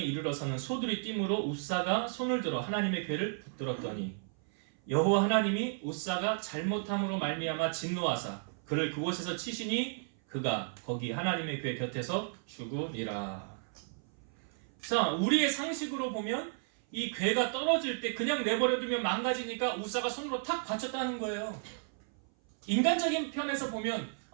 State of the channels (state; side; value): silent; left; 55 dB below the other